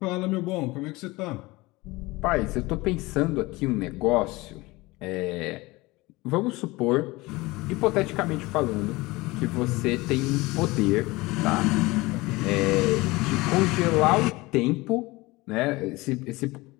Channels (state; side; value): quieter; right; 21.7 dB